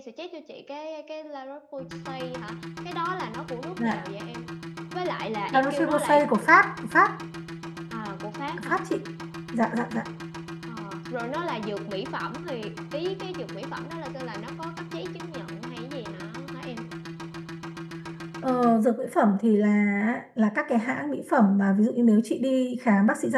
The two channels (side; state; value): both; identical; correlation 1.00